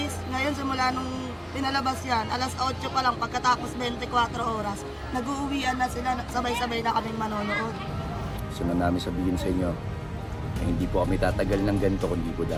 Ngayon simula nung pinalabas yan, alas 8 pa lang pagkatapos 24 oras, nag-uuwian na sila, sabay-sabay na kaming manonood. Gusto na namin sabihin sa inyo na hindi po kami tatagal ng ganito kundi po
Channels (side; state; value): both; identical; correlation 1.00